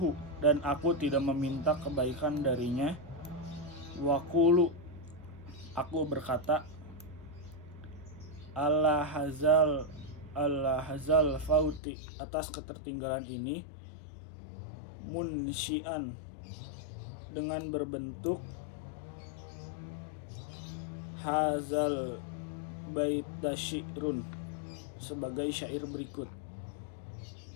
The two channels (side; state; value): right; drops out; at 11.8 s